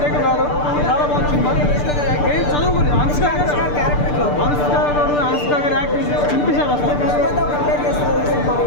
కాదు, చాలా బాగుంది సినిమా. ఏం చదువుకుని అనుష్క గారు యాక్టింగ్ చూపించారు అసలు.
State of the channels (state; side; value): late; right; 6.8 ms